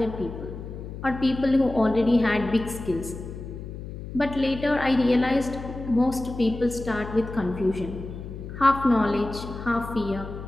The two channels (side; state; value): left; noise; hum, 10 dB below the sound